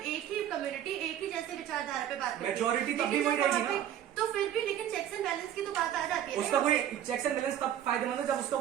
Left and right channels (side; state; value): left; quieter; 10.7 dB